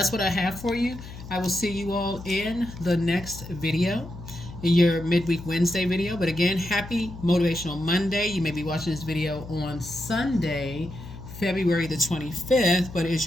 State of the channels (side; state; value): left; noise; hum, 13 dB below the sound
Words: what I have for you. I will see you all in the next video, in your midweek Wednesday video. But again, happy Motivational Monday. You may be watching this video on Sunday, February the 25th, but it's